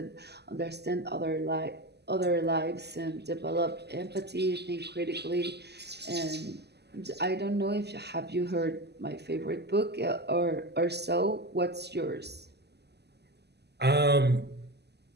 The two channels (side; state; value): left; late; 0.49 ms